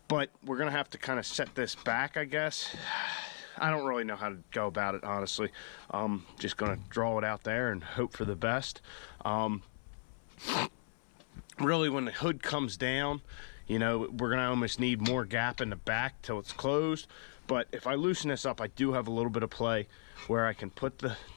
But we're gonna have to kind of set this back, I guess. I don't really know how to go about it, honestly. Just gonna draw it out there and hope for the best. Really, when the hood comes down, you know, we're gonna almost need more gap in the back till it's closed. But if I loosen this up, I do have a little bit of play where I can put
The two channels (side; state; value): right; silent; 53 dB below the other